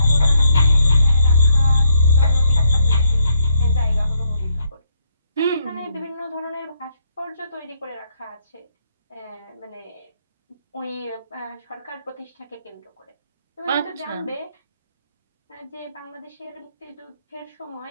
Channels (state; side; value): inverted; both; correlation -0.73